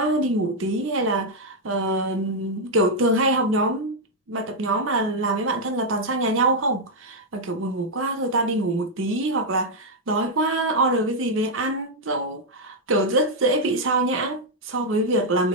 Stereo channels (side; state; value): both; normal; correlation -0.01